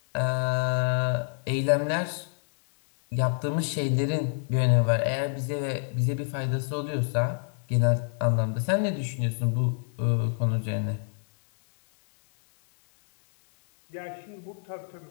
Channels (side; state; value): right; silent; 60 dB below the other